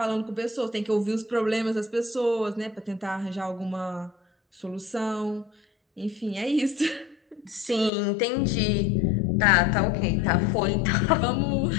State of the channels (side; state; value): right; drops out; at 7.9 s